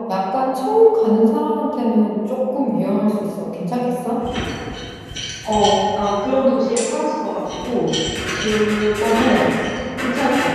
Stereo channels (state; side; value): identical; both; correlation 1.00